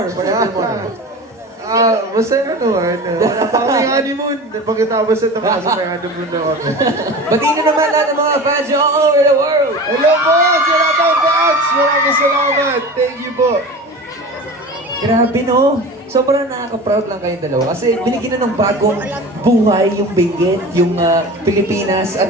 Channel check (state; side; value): normal; both; correlation 0.34